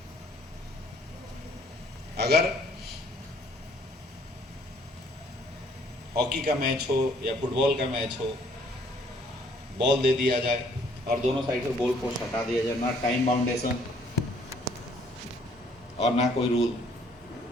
अगर हॉकी का मैच हो या फुटबॉल का मैच हो, बॉल दे दिया जाए और दोनों साइड से गोल पोस्ट हटा दिया जाए, ना टाइम बाउंडेशन और ना कोई रूल।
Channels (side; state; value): both; normal; correlation 0.62